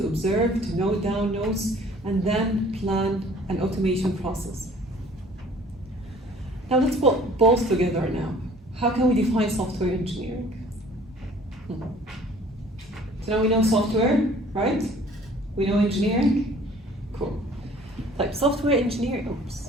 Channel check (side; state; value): both; normal; correlation 0.52